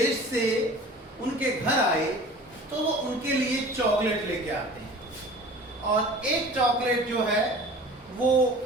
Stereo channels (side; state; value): both; normal; correlation 0.43